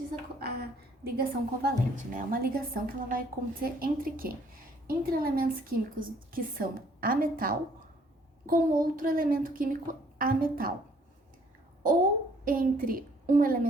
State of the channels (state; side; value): normal; both; correlation 0.62